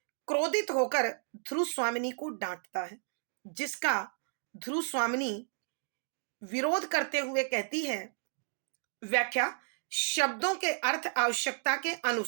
क्रोधित होकर ध्रुव स्वामिनी को डांटता है, जिसका ध्रुव स्वामिनी विरोध करते हुए कहती है, व्याख्या, शब्दों के अर्थ आवश्यकता के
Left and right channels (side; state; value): left; silent; digital silence